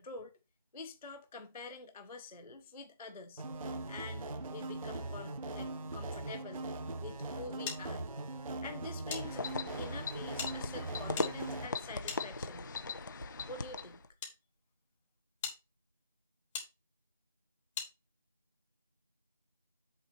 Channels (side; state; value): both; inverted; correlation -0.55